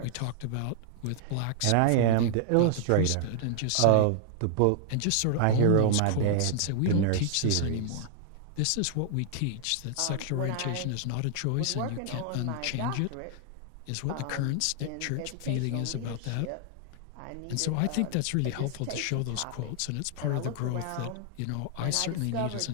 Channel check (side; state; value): both; different; correlation 0.00